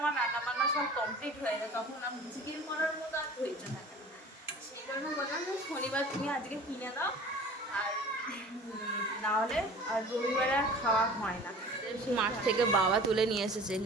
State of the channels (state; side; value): normal; both; correlation 0.43